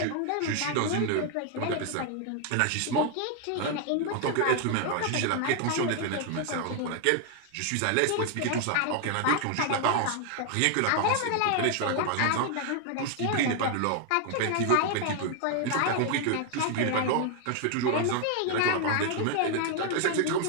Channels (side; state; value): both; different; correlation 0.00